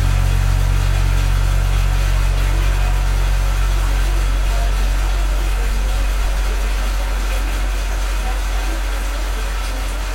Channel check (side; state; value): both; identical; correlation 1.00